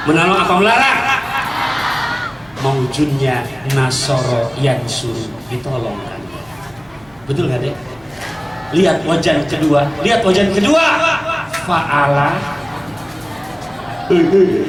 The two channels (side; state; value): right; noise; hum, 29 dB below the sound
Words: Menolong apa melarang? Maujudnya nasoro yang suruh ditolongkan. Betul nggak Dek? Lihat wajan kedua, fa'ala.